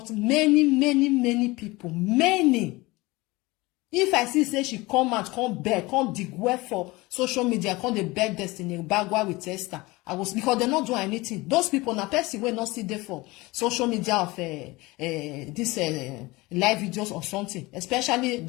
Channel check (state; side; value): quieter; right; 22.0 dB